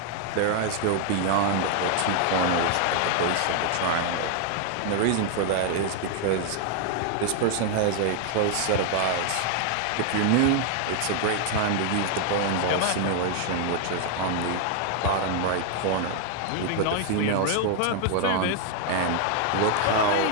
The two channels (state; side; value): different; both; correlation 0.00